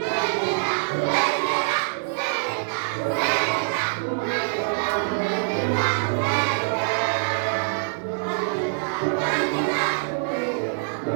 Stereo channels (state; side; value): silent; left; digital silence